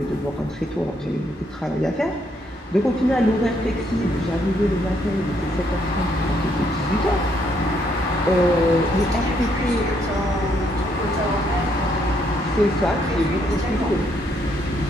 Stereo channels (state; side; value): normal; both; correlation 0.72